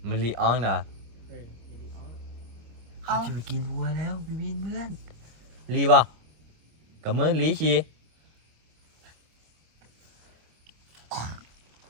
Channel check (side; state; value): left; late; 26 ms